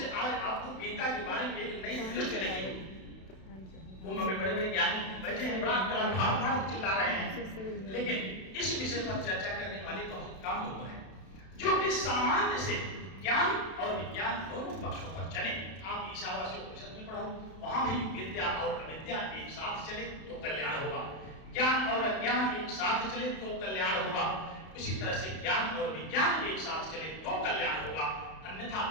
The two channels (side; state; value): right; late; 32 ms